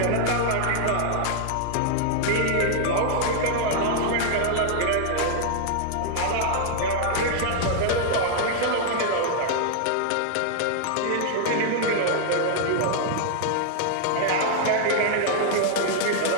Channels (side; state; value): both; different; correlation 0.00